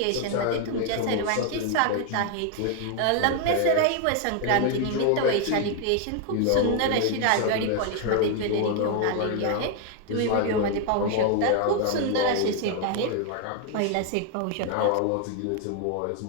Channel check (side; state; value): both; different; correlation 0.00